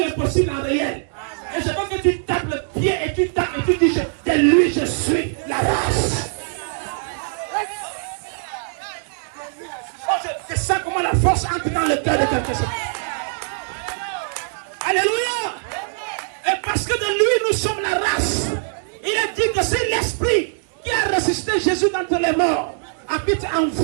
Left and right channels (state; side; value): silent; left; digital silence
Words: en réel. Et je veux que tu tapes le pied et tu tapes et tu dis, de lui je suis la race. Oh, je sens comment la force entre dans le cœur de quelqu'un. Alléluia. Et parce que de lui nous sommes la race. Il a dit que c'est l'esprit qui a ressuscité Jésus d'entre les morts habite en